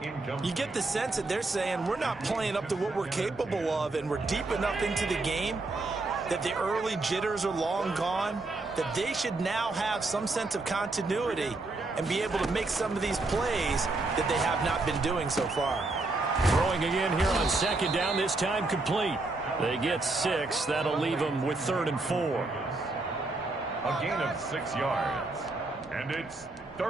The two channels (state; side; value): quieter; left; 3.2 dB